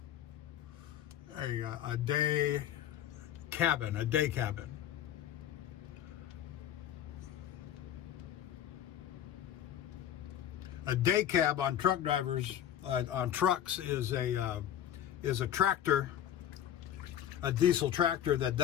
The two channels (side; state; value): right; quieter; 10.8 dB